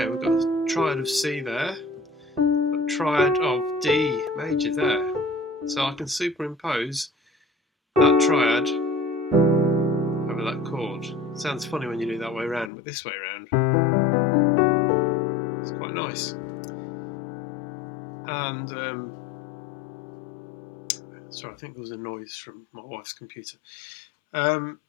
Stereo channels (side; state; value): right; drops out; at 12.7 s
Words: we've got a triad of C there, a triad of D major there, so I can superimpose that triad over that chord. It sounds funny when you do it that way around, but this way around, it's quite nice. And sorry, I think there was a noise from my wife's computer. The